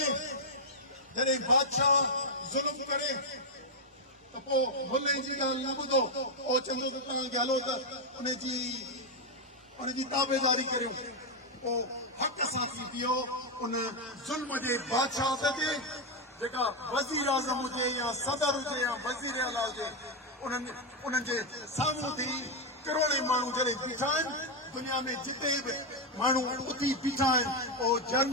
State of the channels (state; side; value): normal; both; correlation 0.03